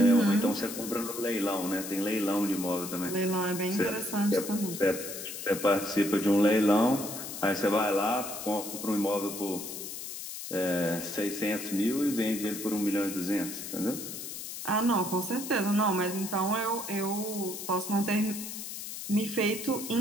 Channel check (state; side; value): noise; left; hiss, 8 dB below the sound